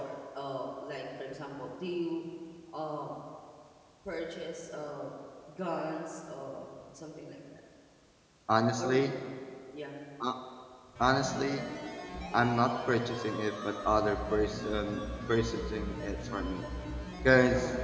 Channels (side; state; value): both; identical; correlation 1.00